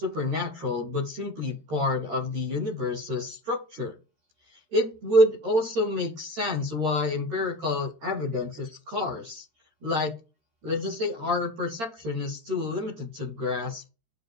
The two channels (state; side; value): late; left; 13 ms